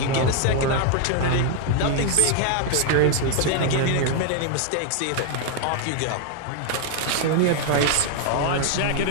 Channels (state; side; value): different; both; correlation 0.00